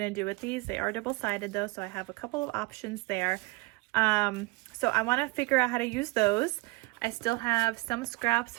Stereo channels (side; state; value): left; quieter; 24.5 dB